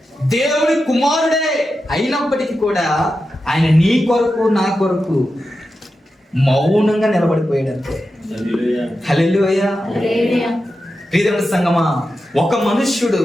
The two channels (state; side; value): normal; both; correlation 0.90